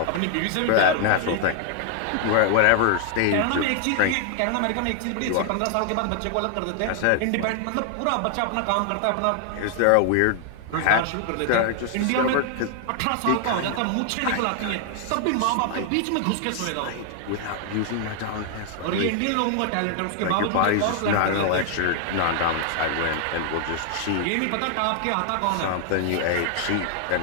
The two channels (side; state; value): both; different; correlation 0.00